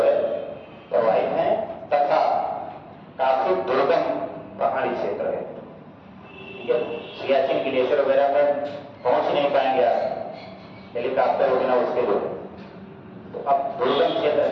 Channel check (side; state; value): both; identical; correlation 1.00